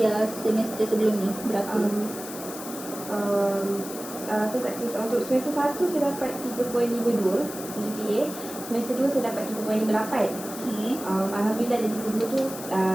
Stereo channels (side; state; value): left; noise; hiss, 11 dB below the sound